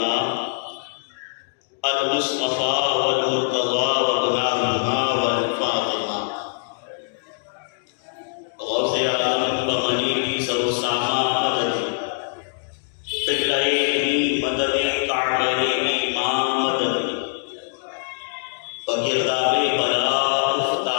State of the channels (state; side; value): silent; right; digital silence